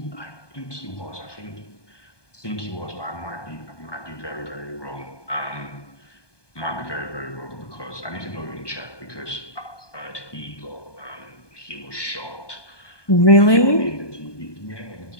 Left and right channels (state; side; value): late; right; 1.2 ms